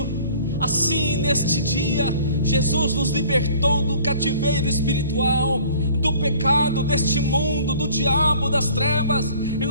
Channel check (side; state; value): both; inverted; correlation -0.51